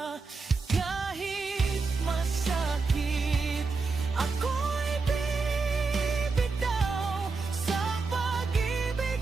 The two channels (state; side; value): quieter; left; 4.3 dB